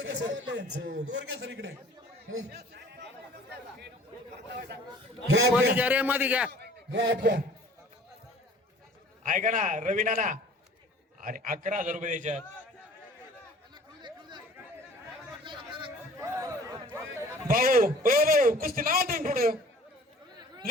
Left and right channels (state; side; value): normal; both; correlation 0.49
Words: सर इकडे मध्ये घ्या रे, मध्ये घ्या. ऐका ना रवी नाना, अरे 11,000 रुपये द्यायच्यात. भाऊ, ओ भाऊ, कुस्ती नाव तुम्ही पुढं